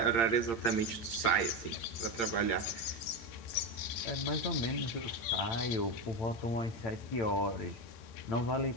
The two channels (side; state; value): right; late; 8.7 ms